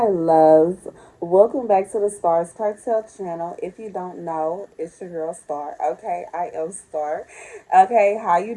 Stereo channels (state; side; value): identical; both; correlation 1.00